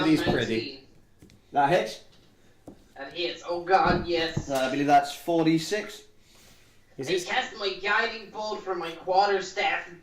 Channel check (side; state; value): both; identical; correlation 1.00